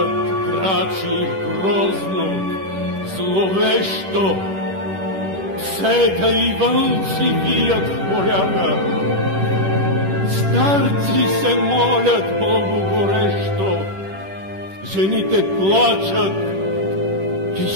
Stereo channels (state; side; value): late; left; 10 ms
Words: крачи грозно, зловещо, псета и вълци вият в полята, старци се молят Богу горещо, жените плачат и